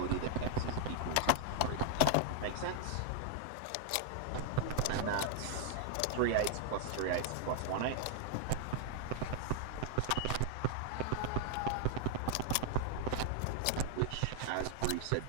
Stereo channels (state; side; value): different; both; correlation 0.00